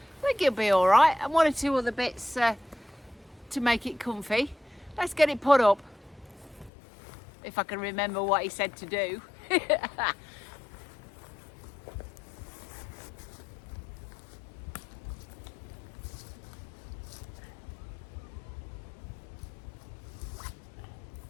I think it'll be all right, and one or two other bits to make it comfy. Let's get it put up, if I can remember what he said to do.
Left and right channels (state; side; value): drops out; right; at 6.7 s